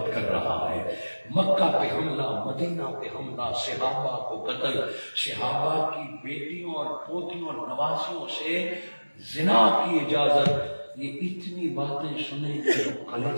کر رہا ہے۔ مکہ پہ حملہ، مدینہ پہ حملہ، صحابہ کو قتل، صحابہ کی بیٹیوں اور پوتیوں اور نواسیوں سے زنا کی اجازت۔ یہ اتنی باتیں سنیں کہ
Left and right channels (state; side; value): inverted; both; correlation -1.00